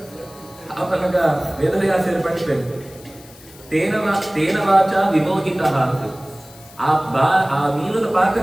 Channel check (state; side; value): noise; left; hiss, 22 dB below the sound